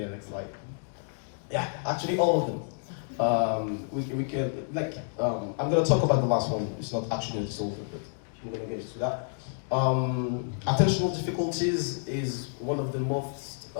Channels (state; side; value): silent; right; digital silence